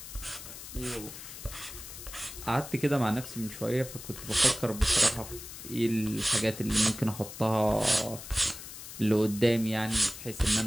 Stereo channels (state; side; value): noise; left; hiss, 12 dB below the sound